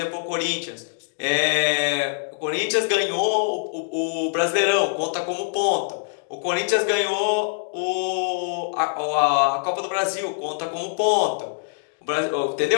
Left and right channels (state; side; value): silent; right; digital silence